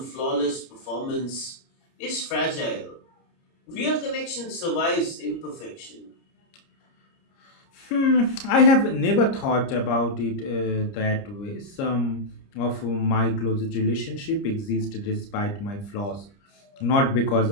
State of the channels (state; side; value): late; right; 30 ms